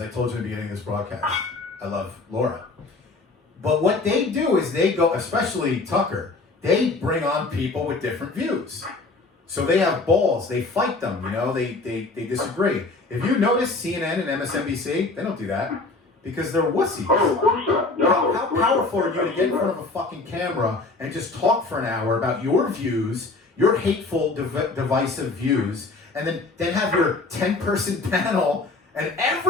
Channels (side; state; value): right; quieter; 3.5 dB